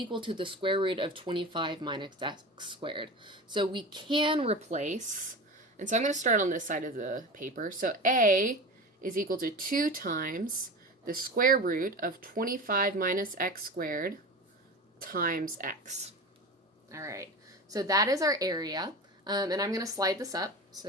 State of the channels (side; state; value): both; normal; correlation 0.29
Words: to the square root of 25 minus x squared. So we can replace, and so I'm going to start on this side of the paper. So A is equal to 2 times the square root of 25 minus x squared times x. All right, so that is our area, and I'm going to slide this up